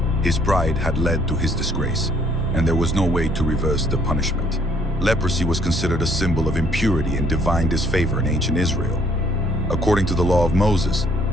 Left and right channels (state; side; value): normal; both; correlation 0.64